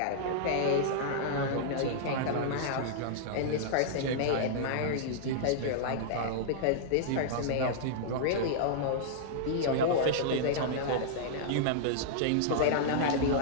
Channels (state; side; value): different; both; correlation -0.02